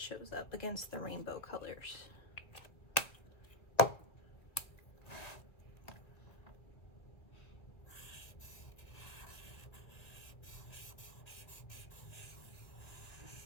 shows up against the rainbow colors.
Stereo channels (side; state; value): right; late; 1.9 ms